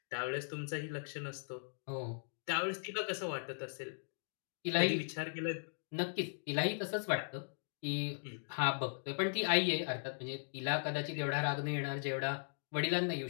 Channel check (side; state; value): right; silent; digital silence